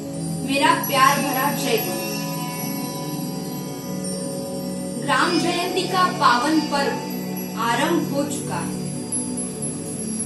मेरा प्यार भरा जय गुरु। ग्राम जयंती का पावन पर्व आरंभ हो चुका है।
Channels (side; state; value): both; identical; correlation 1.00